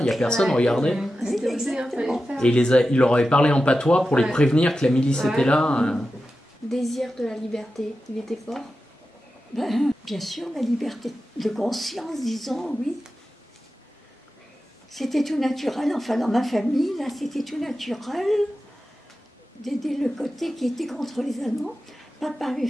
n'y a personne, regardez. Oui, exactement. Et il leur avait parlé en patois pour les prévenir que la milice était là. Désir de la liberté, il était fort? Ben, bien sûr, la liberté de conscience, disons, oui. C'était tout naturel, enfin dans ma famille, là, c'était tout naturel d'aider le côté qui était contre les Allemands. Papa avait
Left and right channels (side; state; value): both; normal; correlation 0.92